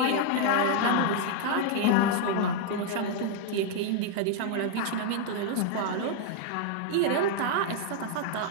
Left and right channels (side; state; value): both; different; correlation 0.00